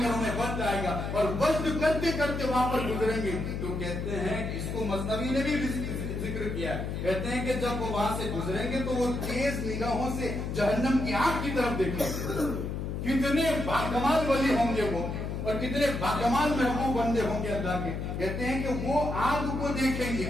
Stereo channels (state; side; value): noise; left; hum, 4 dB below the sound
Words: کر انہیں وجد آئے گا اور وجد کرتے کرتے وہاں پر گزریں گے. تو کہتے ہیں اس کو مثنوی نے بھی ذکر کیا ہے. کہتے ہیں کہ جب وہ وہاں سے گزریں گے تو وہ تیز نگاہوں سے جہنم کی آگ کی طرف دیکھیں گے. کتنے باکمال ولی ہوں گے وہ, اور کتنے باکمال محبوب بندے ہوں گے اللہ کے. کہتے ہیں کہ وہ آگ کو دیکھیں گے,